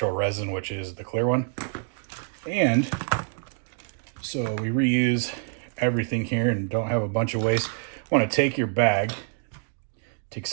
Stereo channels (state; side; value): silent; left; 57 dB below the other